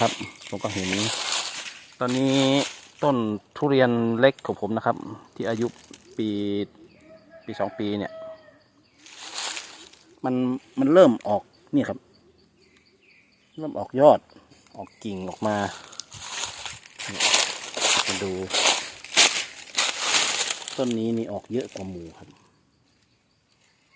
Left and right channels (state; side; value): identical; both; correlation 1.00